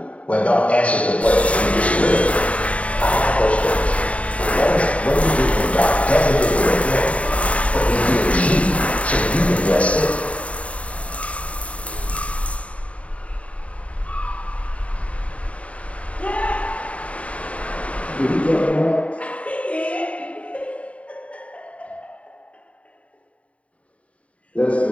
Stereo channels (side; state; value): right; late; 0.065 ms